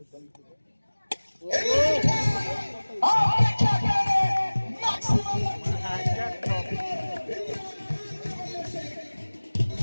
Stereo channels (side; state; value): both; inverted; correlation -1.00